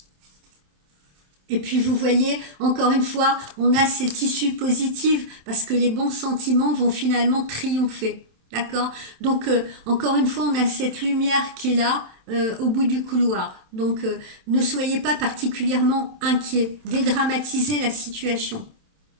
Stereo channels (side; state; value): left; late; 27 ms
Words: Et puis vous voyez, encore une fois, on a cette issue positive parce que les bons sentiments vont finalement triompher. D'accord. Donc, encore une fois, on a cette lumière qui est là au bout du couloir. Donc, ne soyez pas particulièrement inquiets. Dédramatisez la situation.